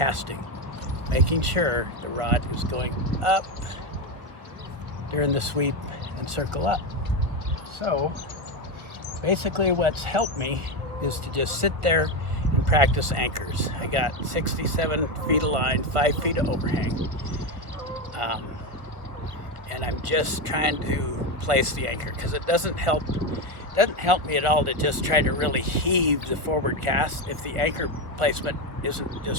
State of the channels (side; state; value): left; late; 1.1 ms